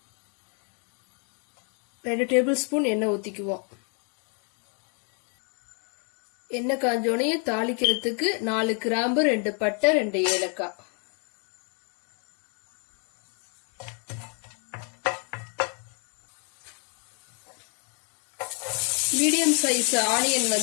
2 டேபிள் ஸ்பூன் எண்ணெய் ஊத்திக்குவோம். எண்ணெய் காஞ்சோனையும் தாளிக்கிறதுக்கு 4 கிராம்பு, 2 பட்டை, 2 ஏலக்காய். மீடியம் சைஸ் ஆனியன்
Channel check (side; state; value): right; quieter; 39.6 dB